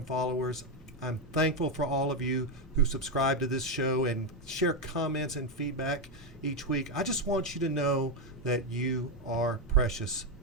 followers. I'm thankful for all of you who subscribe to this show and share comments and feedback each week. I just want you to know that you are precious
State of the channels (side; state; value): both; normal; correlation 0.06